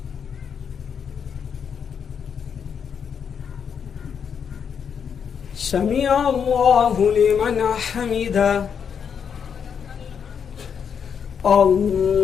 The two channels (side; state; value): right; quieter; 7.2 dB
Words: سمع الله لمن حمده.